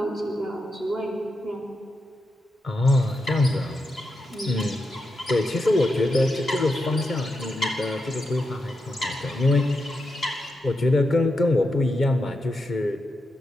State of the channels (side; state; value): both; normal; correlation 0.86